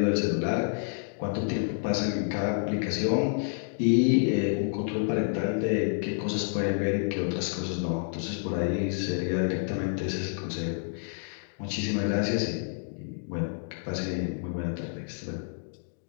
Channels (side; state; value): right; silent; digital silence